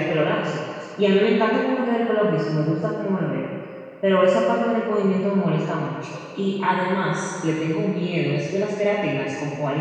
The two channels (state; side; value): identical; both; correlation 1.00